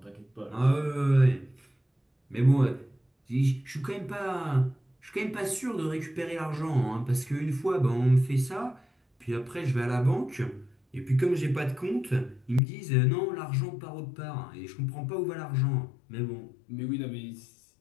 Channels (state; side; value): drops out; right; at 12.6 s